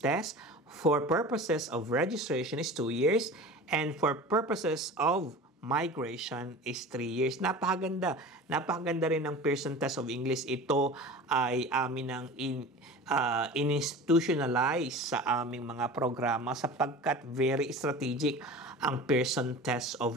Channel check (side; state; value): both; normal; correlation 0.36